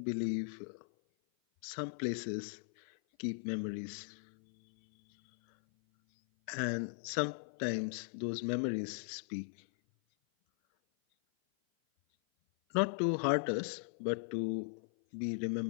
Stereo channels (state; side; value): silent; right; 52 dB below the other